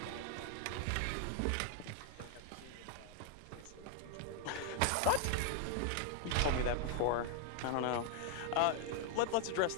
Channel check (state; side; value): different; both; correlation 0.00